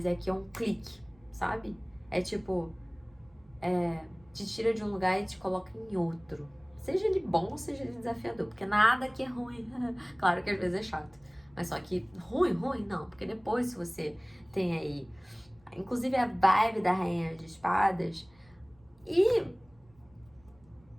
é que é um clique, sabe? É tipo, te tira de um lugar e te coloca em outro. Seja ele bom ou seja ele desafiador, porque nada aqui é ruim. Claro que às vezes é chato, mas só que ruim não, porque depois se você tem aí, inclusive a vibe da Rainha de Espadas e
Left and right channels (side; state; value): right; noise; rumble, 30 dB below the sound